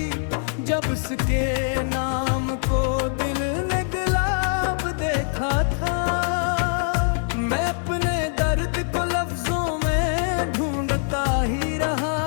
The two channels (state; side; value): silent; right; digital silence